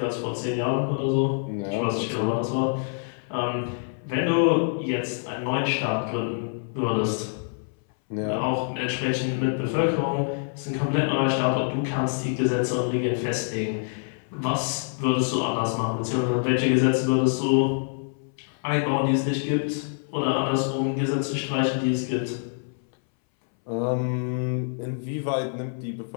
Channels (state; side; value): silent; right; 61 dB below the other